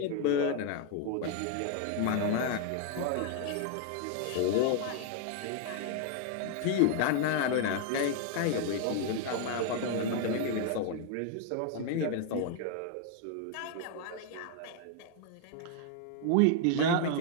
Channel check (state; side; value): different; both; correlation 0.00